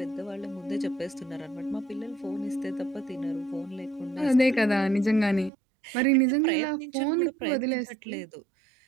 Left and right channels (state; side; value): drops out; left; at 5.5 s